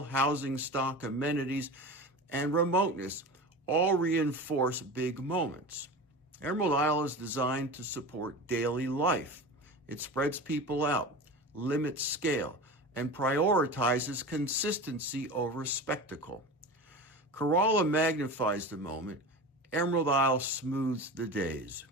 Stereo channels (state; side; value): normal; both; correlation 0.31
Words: housing stock, amenities, and remoteness all reinforce big moments. Emerald Isle is designed to support daily life. It spreads people out, limits scale, and prioritizes consistency over spectacle. Corolla magnifies the moment. Emerald Isle smooths the days.